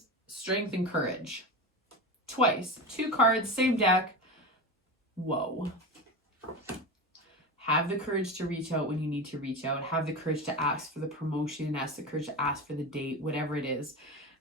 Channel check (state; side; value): normal; both; correlation 0.24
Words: strength and courage. Twice. 2 cards, same deck. Whoa. Have the courage to reach out when you need to reach out. Have the courage to ask for the promotion, ask the courage to ask for the date, whatever it is.